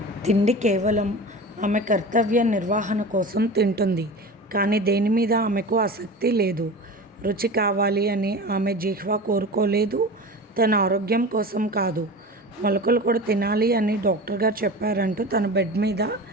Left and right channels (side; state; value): both; normal; correlation 0.33